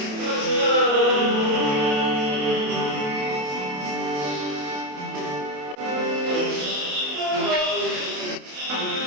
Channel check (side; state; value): left; late; 27 ms